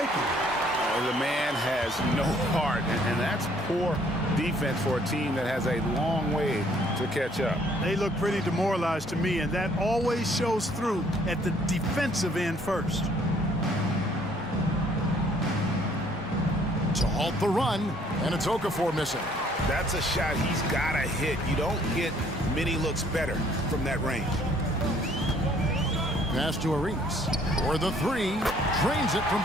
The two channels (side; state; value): both; normal; correlation 0.62